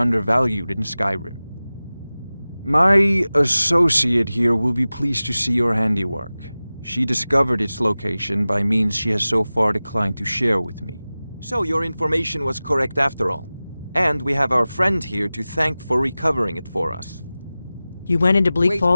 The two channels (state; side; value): inverted; both; correlation -0.97